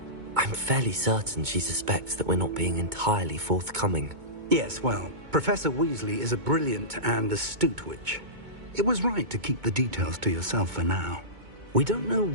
I'm fairly certain she suspects that we're not being entirely forthcoming. Yes, well, Professor Weasley is a brilliant and astute witch. It was right to keep the details to yourself for now. We don't know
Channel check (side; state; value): left; late; 2.2 ms